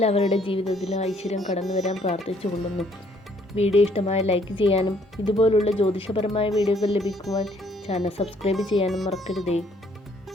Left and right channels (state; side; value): normal; both; correlation 0.64